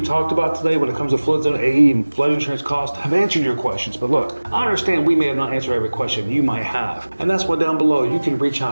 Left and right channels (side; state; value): both; inverted; correlation -1.00